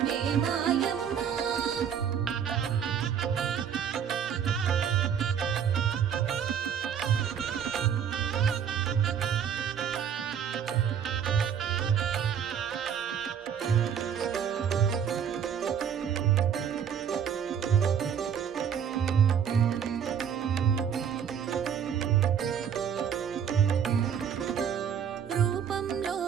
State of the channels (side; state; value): left; quieter; 8.1 dB